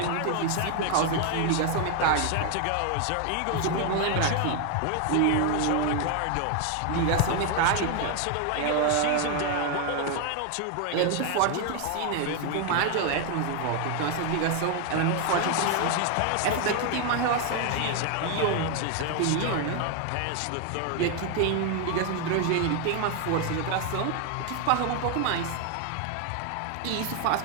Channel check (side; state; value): both; different; correlation 0.01